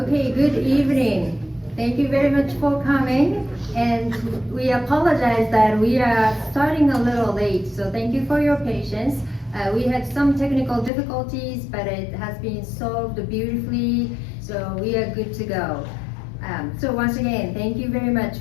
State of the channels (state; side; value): drops out; right; at 10.9 s